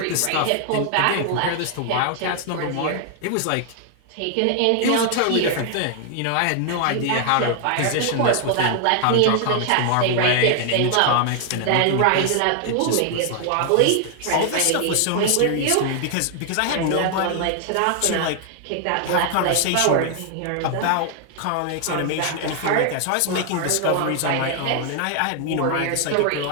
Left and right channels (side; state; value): both; different; correlation 0.00